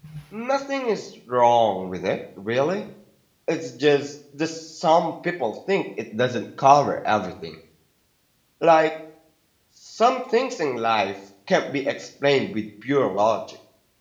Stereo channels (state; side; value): identical; both; correlation 1.00